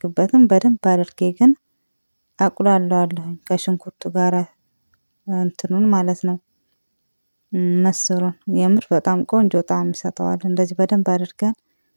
በደንብ አድርጌ ግን አቁላለዋለሁኝ ከሽንኩርቱ ጋር እንትኑን ማለት ነው። ምስሩን የምር በጣም ቆንጆ ጣዕም ይሰጠዋል። እንደዚህ በደንብ አድርገን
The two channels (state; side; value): inverted; both; correlation -1.00